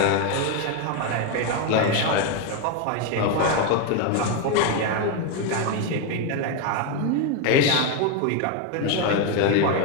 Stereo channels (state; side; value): different; both; correlation 0.02